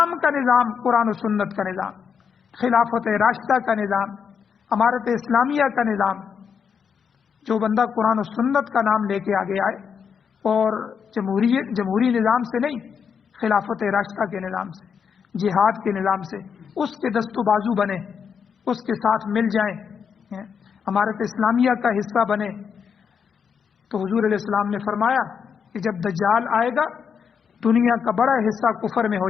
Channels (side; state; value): right; quieter; 6.8 dB